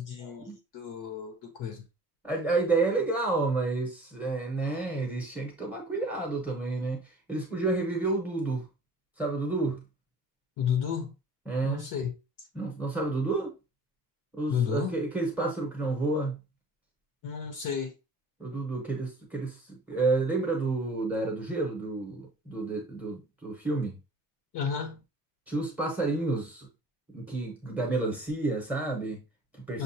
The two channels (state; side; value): normal; both; correlation 0.47